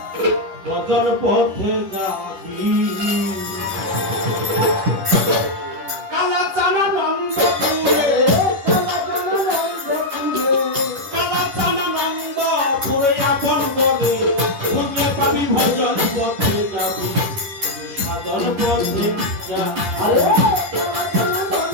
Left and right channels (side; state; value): left; late; 10 ms